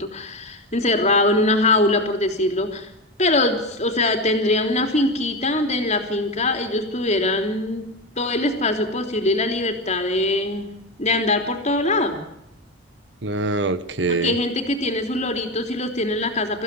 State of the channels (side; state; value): both; normal; correlation 0.18